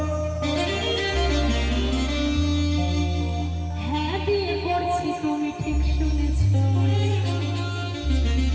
হ্যাঁ বিয়ে করছি, তুমি ঠিক শুনেছ।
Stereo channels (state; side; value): identical; both; correlation 1.00